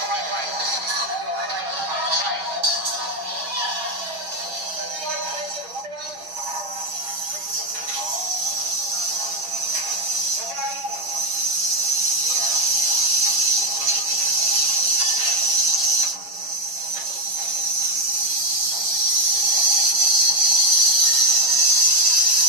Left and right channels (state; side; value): late; left; 6.1 ms